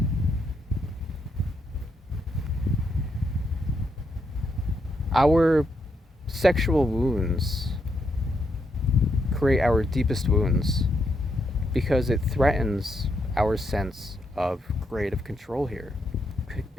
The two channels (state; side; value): normal; both; correlation 0.79